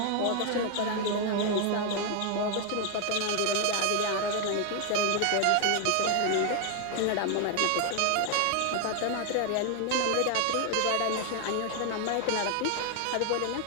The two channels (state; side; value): different; both; correlation 0.00